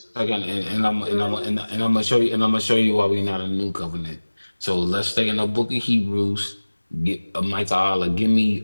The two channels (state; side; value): inverted; both; correlation -1.00